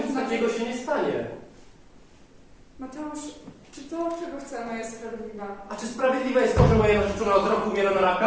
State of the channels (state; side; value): identical; both; correlation 1.00